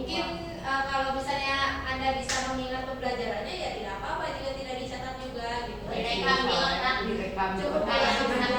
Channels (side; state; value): both; identical; correlation 1.00